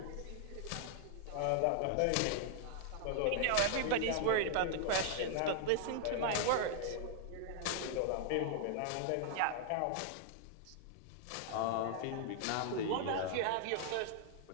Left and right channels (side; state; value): both; different; correlation 0.00